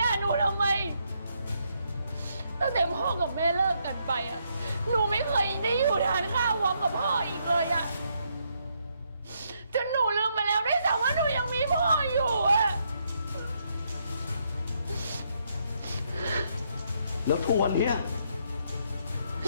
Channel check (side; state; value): both; inverted; correlation -0.75